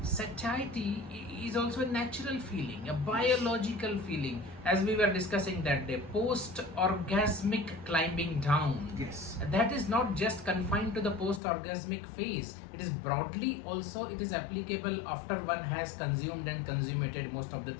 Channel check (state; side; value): drops out; right; at 11.4 s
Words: satiety is also a natural feeling, a biological feeling, as we were discussing that day, post-orgasmic climbing down. Yes. That is not just confined to the post-orgasmic phase. It is broadly also, it is applicable after one has consumed and consummated most of the